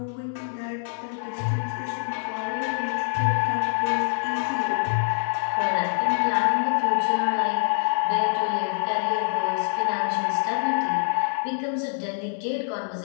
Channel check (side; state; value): right; silent; digital silence